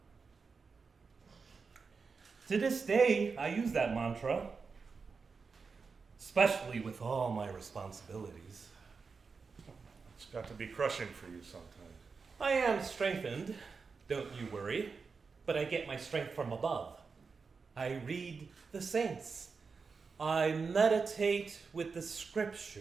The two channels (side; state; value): left; quieter; 4.9 dB